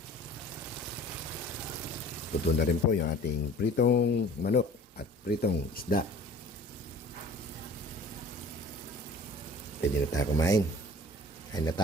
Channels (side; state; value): both; normal; correlation 0.46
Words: Luto na rin po yung ating pritong manok at pritong isda. Pwede na tayo kumain. Kain na